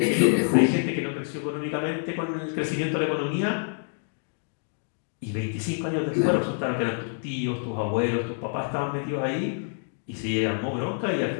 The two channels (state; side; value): silent; right; digital silence